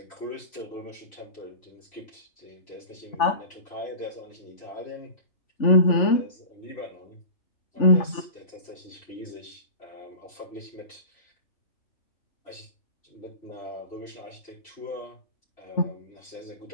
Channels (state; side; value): late; right; 3.4 ms